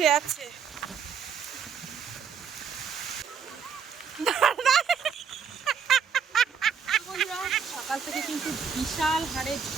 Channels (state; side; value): quieter; left; 6.8 dB